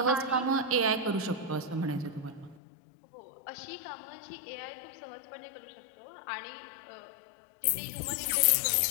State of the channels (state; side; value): drops out; right; at 2.6 s